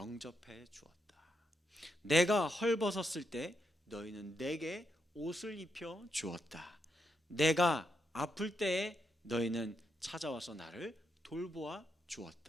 주었다. 내가 헐벗었을 때 너희는 내게 옷을 입혀 주었다. 내가 아플 때에 너희는 찾아와서 나를 돌보아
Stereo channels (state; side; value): normal; both; correlation 0.81